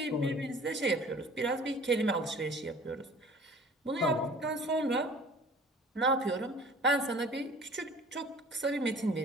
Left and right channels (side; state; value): both; normal; correlation 0.47